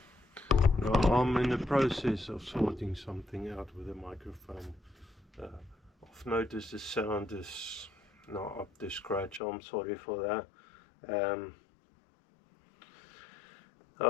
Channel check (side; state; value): right; drops out; at 9.4 s